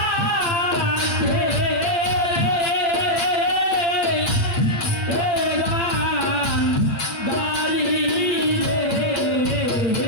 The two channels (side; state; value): right; late; 8.3 ms